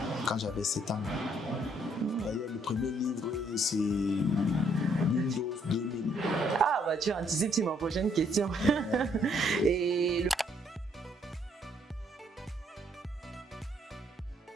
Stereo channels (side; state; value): both; normal; correlation 0.68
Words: quand j'avais 7 ans. D'ailleurs, le premier livre, c'est Windows 2000. Ah, bah tu anticipes sur ma prochaine question. Et